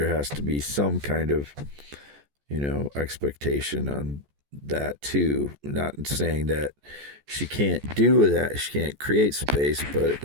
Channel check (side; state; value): left; late; 14 ms